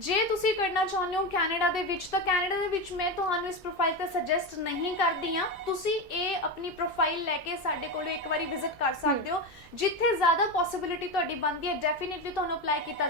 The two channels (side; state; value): both; normal; correlation 0.16